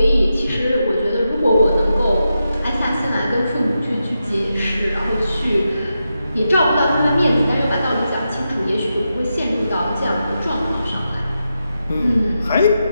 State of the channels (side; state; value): both; inverted; correlation -0.88